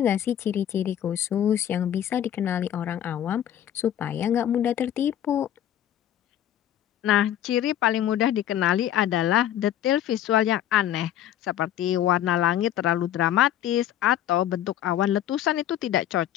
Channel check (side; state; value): right; quieter; 11.2 dB